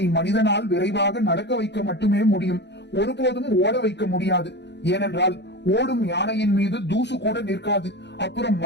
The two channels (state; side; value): late; right; 0.50 ms